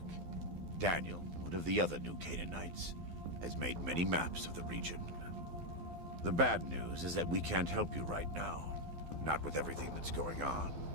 Daniel, one of the other New Canaanites, has made many maps of the region. The bad news is that we can't help you right now. Not with everything that's going on.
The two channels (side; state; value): left; late; 12 ms